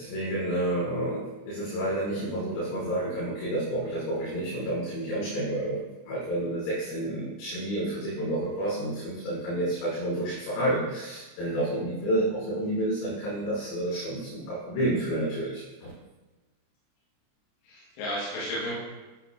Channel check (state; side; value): late; right; 30 ms